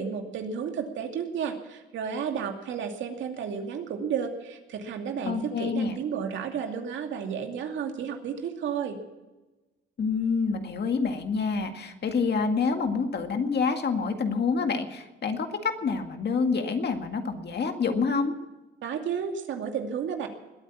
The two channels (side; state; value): both; normal; correlation 0.43